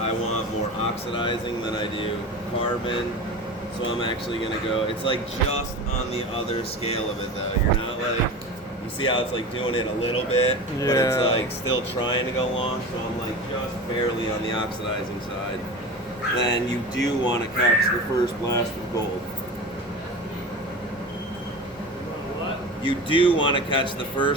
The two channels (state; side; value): normal; both; correlation 0.31